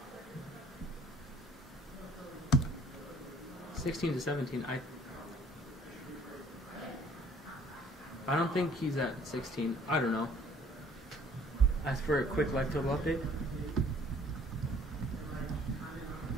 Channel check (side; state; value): both; normal; correlation 0.56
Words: (16 to 17). I don't think he's at 16. I don't know. As for a quick life total update.